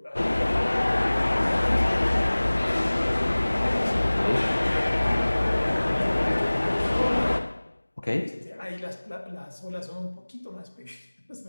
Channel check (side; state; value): both; inverted; correlation -1.00